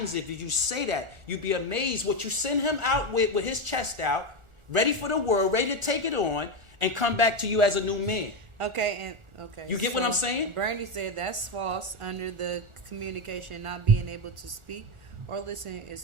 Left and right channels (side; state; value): left; late; 1.4 ms